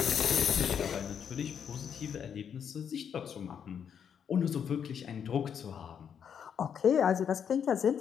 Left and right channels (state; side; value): quieter; right; 7.9 dB